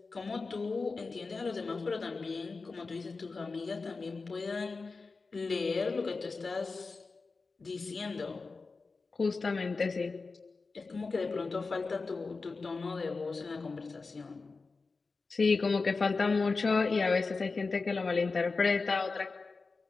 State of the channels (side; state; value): right; quieter; 4.1 dB